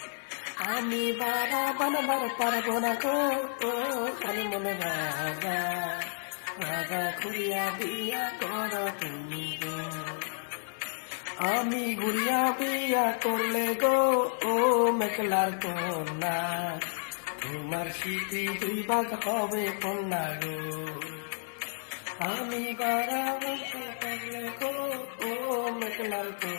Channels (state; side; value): silent; right; digital silence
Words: আমি পারা বানাবার পারবো না গো, ও খালি মনে রাজা রাজা ঘুরিয়া দিয়া কর তুমি গো। আমি ঘুরিয়া বিয়া করলে গো, ও মেঘলার কন্যা তোমার স্মৃতি দুই ভাগ হবে কন্যা গো। আমি গারা বিয়া করলে গো, ও মেঘলার